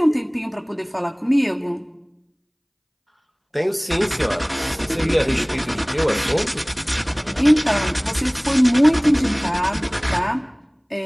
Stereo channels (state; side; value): identical; both; correlation 1.00